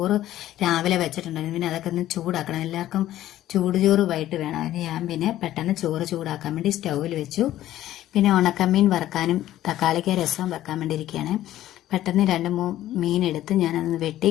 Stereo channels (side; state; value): right; quieter; 13.6 dB